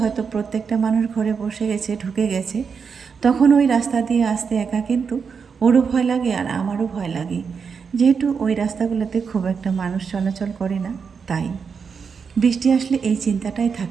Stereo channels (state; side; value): quieter; left; 6.0 dB